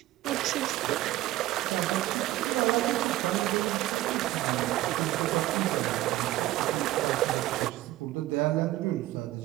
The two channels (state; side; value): quieter; left; 16.0 dB